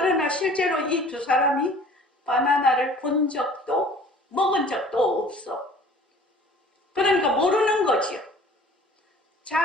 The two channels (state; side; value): normal; both; correlation 0.49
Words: 실제로 이 두 사람이 바나나를 본 적도 먹은 적도 없어. 그러니까 모르는 거지요.